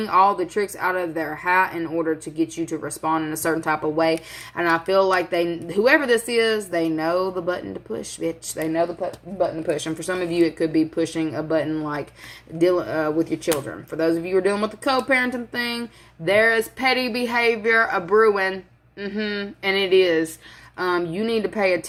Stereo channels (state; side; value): identical; both; correlation 1.00